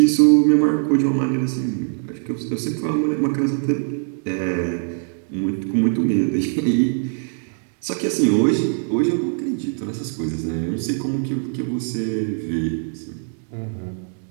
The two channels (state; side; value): silent; left; 61 dB below the other